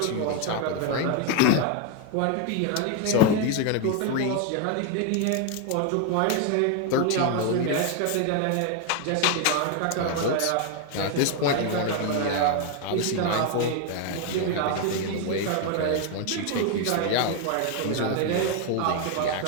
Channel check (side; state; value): both; different; correlation 0.01